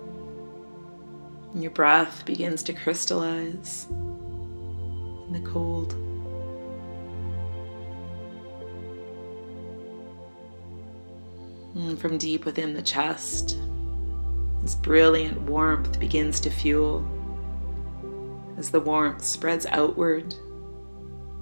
And your breath begins to crystallize in the cold. And from deep within the chest, this brilliant warmth begins to fuel as the warmth spreads outward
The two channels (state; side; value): inverted; both; correlation -1.00